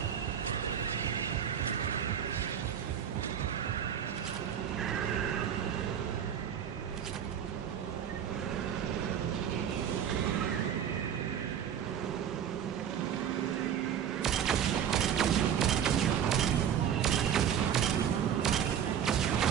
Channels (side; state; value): left; quieter; 8.9 dB